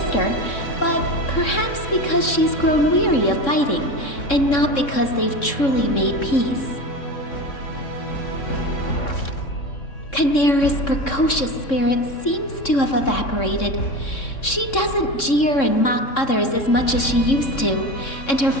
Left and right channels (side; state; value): right; late; 3.6 ms